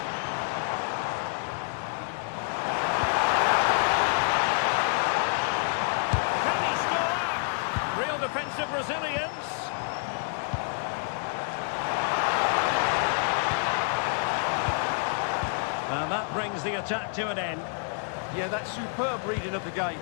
Can he score? Real defensive resilience. And that brings the attack to an end. Yeah, that's superb reading of the game.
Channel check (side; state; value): right; silent; 59 dB below the other